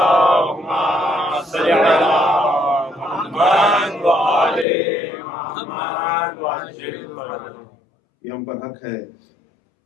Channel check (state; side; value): drops out; right; at 4.7 s